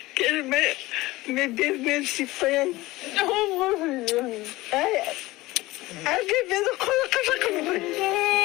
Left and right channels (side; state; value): right; quieter; 19.2 dB